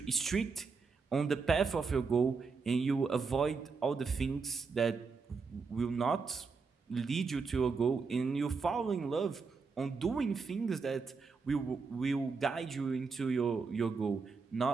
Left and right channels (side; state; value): left; quieter; 4.9 dB